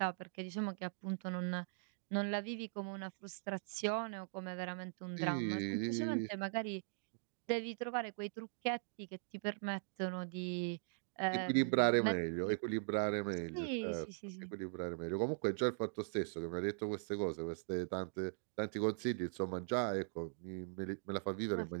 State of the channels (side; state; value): left; silent; digital silence